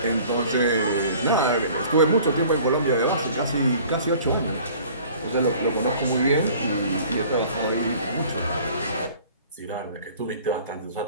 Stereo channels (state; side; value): inverted; both; correlation -0.49